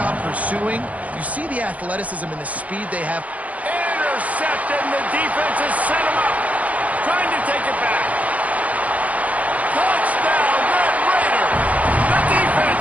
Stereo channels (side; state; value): left; late; 0.070 ms